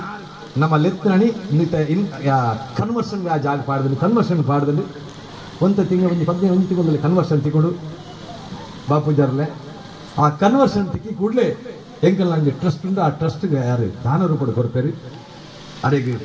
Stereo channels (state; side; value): identical; both; correlation 1.00